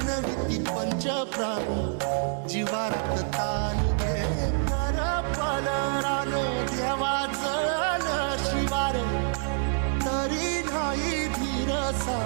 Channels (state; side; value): silent; left; 60 dB below the other